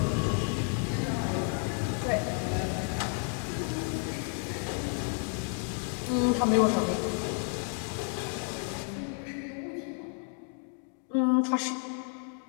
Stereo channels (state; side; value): quieter; right; 39.4 dB